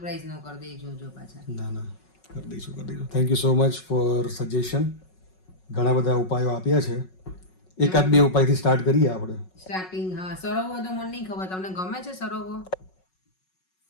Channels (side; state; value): right; late; 5.4 ms